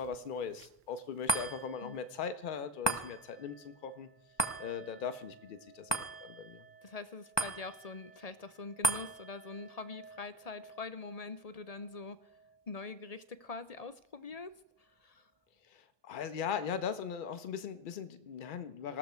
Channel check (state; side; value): late; right; 1.2 ms